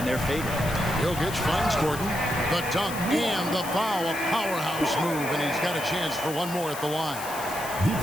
their favor. Jokic finds Gordon. The dunk and the foul, a powerhouse move, and he's got a chance for one more at the line.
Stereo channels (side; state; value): left; noise; hiss, 11 dB below the sound